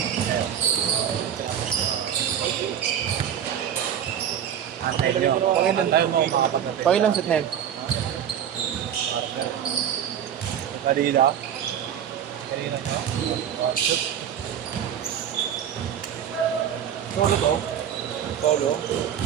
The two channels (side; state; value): left; quieter; 9.3 dB